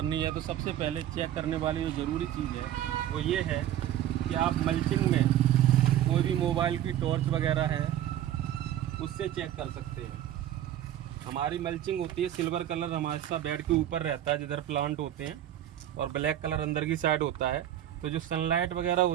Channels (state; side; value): quieter; left; 11.8 dB